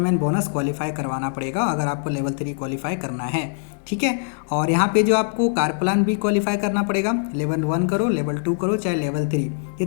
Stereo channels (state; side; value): silent; right; digital silence